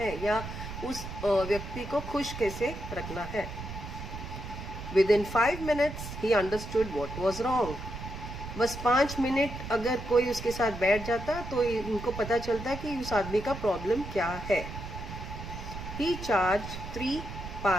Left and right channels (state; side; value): noise; right; rumble, 9 dB below the sound